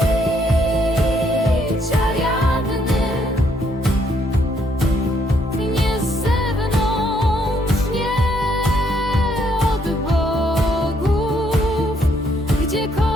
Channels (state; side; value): normal; both; correlation 0.71